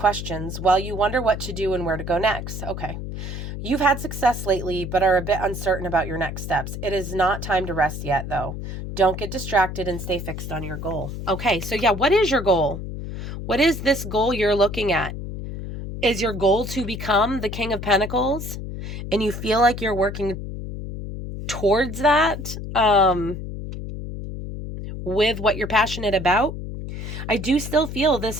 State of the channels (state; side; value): noise; left; hum, 7 dB below the sound